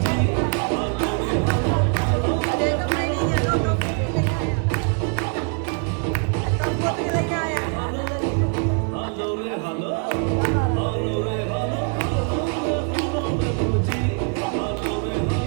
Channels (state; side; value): quieter; left; 39.9 dB